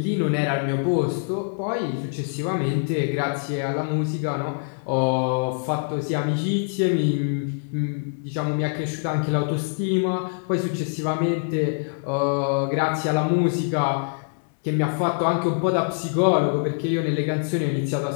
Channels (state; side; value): silent; right; digital silence